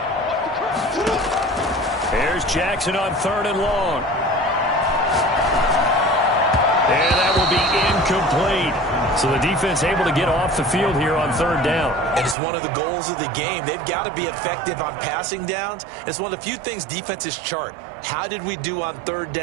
Here's Jackson on third and long. And that will be incomplete. So the defense able to get off the field here on third down. And it's one of the goals of the game. They've got to be effective on passing downs. It's one of the few things defenses chart. How did we do on third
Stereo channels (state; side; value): drops out; left; at 12.4 s